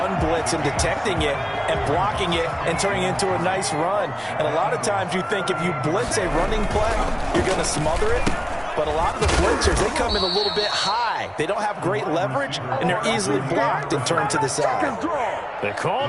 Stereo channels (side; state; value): both; identical; correlation 1.00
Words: blitz and detecting it and blocking it and turning it into a nice run. And a lot of times you think if you blitz a running play, you're going to smother it. But a lot of the blitzers, they come in a little bit high. They don't have great leverage, and they're easily blocked and turned to the side. They call